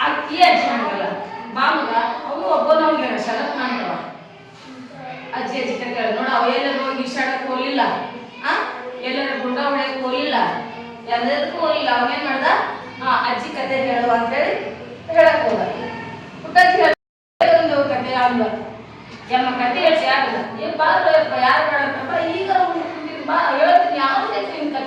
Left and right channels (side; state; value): both; identical; correlation 1.00